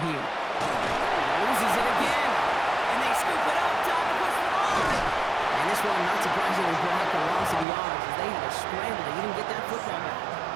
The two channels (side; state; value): left; drops out; at 7.7 s